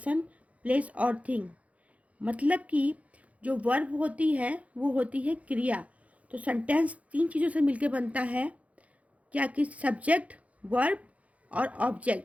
place और थिंग। मतलब कि जो वर्ब होती है वो होती है क्रिया। तो सेंटेंस तीन चीज़ों से मिलकर बनता है, क्या कि सब्जेक्ट, वर्ब और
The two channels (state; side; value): late; left; 0.066 ms